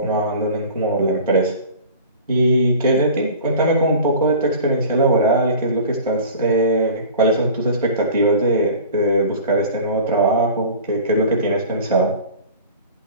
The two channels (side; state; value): both; inverted; correlation -0.41